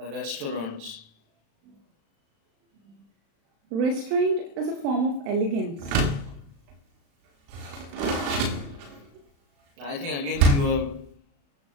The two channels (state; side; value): late; left; 36 ms